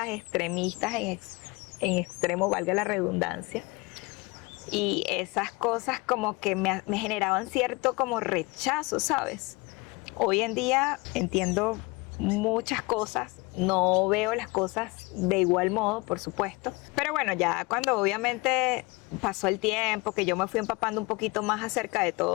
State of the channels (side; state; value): right; quieter; 25.5 dB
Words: extremistas en extremo, valga la redundancia, y esas cosas como que me generaban cierto como rechazo, ¿sabes? Hoy en día entiendo muchas cosas, no veo las cosas de igual modo, por supuesto, pero bueno, ya cuando obviamente pasó el tiempo, que yo me fui empapando un poquito más acerca de